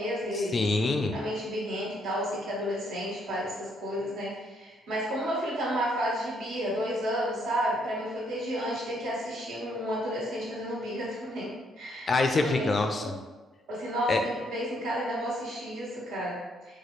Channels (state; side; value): normal; both; correlation 0.71